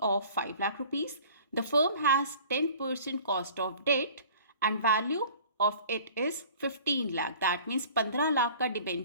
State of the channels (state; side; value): inverted; both; correlation -0.48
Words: of 5 lakh rupees. The firm has 10% cost of debt and value of it is 15 lakh. That means 15 lakh का